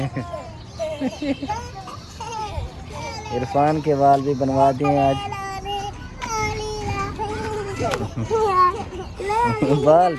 इरफान के बाल भी बनवा दिए आज। बाल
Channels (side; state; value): both; identical; correlation 1.00